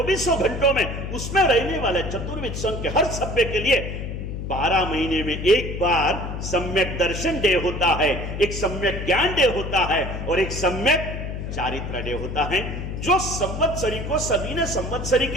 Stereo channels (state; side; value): noise; left; hum, 6 dB below the sound